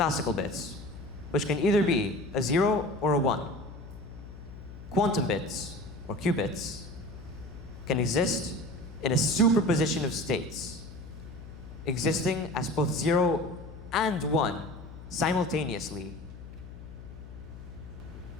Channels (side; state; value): left; noise; hum, 14 dB below the sound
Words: bits, which can either be a 0 or a 1, quantum bits, or qubits, can exist in a superposition of states, existing as both 0 and 1 simultaneously.